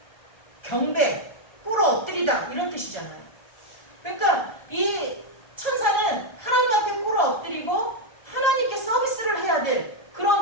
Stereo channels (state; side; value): late; right; 1.3 ms